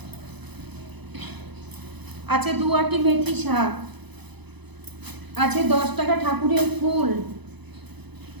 আছে 2 আটি মেথি শাক, আছে 10 টাকা ঠাকুরের ফুল,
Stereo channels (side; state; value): left; late; 0.99 ms